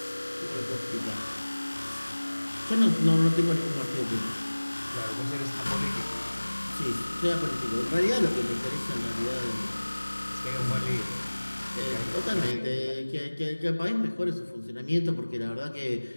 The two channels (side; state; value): both; inverted; correlation -1.00